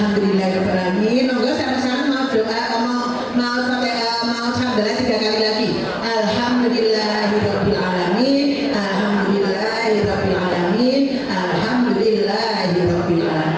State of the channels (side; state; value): both; identical; correlation 1.00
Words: Monggo sama-sama mau doa, mau sampai mau hamdalah 3 kali lagi. Alhamdulillahirobbilalamin, alhamdulillahirobbilalamin,